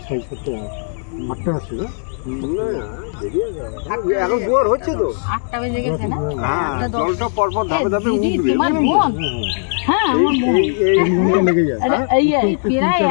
এখন জোয়ার হচ্ছে তো, 8টা বেজে গেছে না? জলটা পরপর ধাপে ধাপে উঠবে। তোমার বোন? হ্যাঁ, আমার বোন। এই প্রায়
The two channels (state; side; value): silent; right; 67 dB below the other